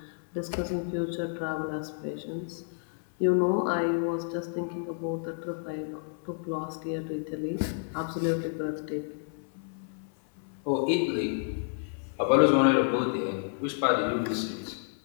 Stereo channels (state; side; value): silent; right; 58 dB below the other